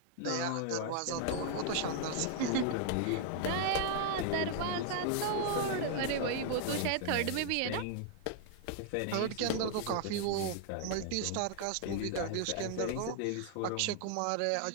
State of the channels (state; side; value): different; both; correlation 0.00